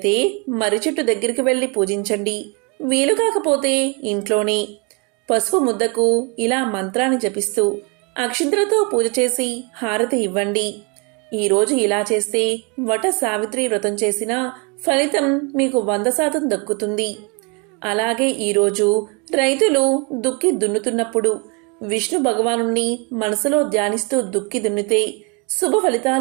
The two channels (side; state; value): left; quieter; 32.2 dB